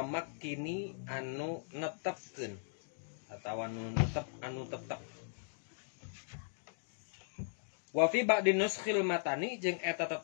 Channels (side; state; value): right; silent; digital silence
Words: anu netepkeun atau anu tetep wa fi ba'di nuskhil matani jeung eta